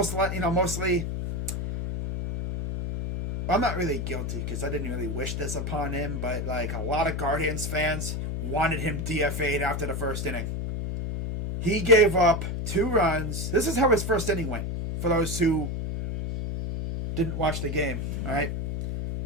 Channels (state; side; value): noise; left; hum, 3 dB below the sound